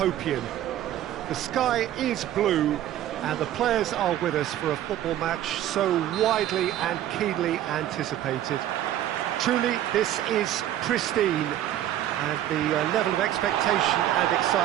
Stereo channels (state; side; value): quieter; left; 12.3 dB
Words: The sky is blue and the players are with us for a football match so widely and keenly anticipated. Truly, this is pristine, and the level of expectation and